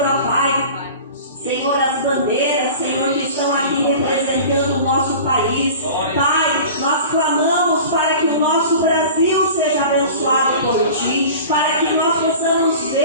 ó Pai, Senhor, as bandeiras, Senhor, que estão aqui representando o nosso país. Pai, nós clamamos para que o nosso Brasil seja abençoado por Ti, para que nós possamos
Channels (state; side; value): inverted; both; correlation -0.39